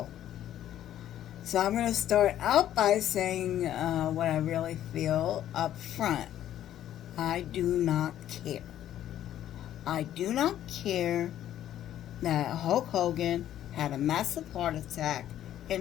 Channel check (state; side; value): quieter; right; 11.7 dB